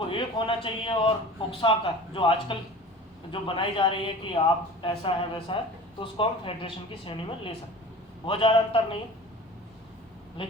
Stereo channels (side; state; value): both; normal; correlation 0.40